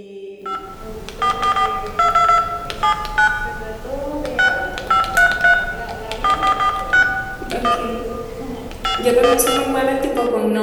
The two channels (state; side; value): identical; both; correlation 1.00